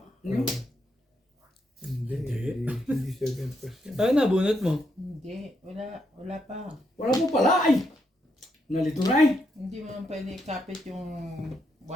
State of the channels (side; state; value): both; normal; correlation 0.79